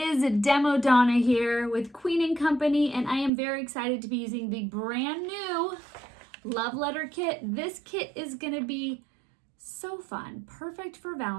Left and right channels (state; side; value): drops out; left; at 3.3 s